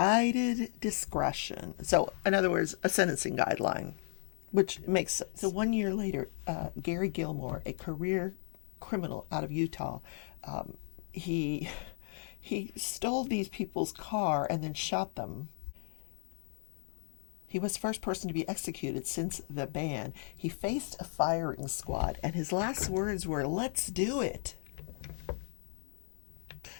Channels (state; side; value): silent; right; digital silence